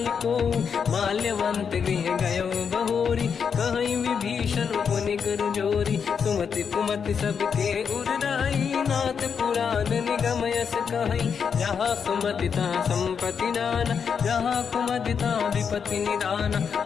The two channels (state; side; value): quieter; right; 6.7 dB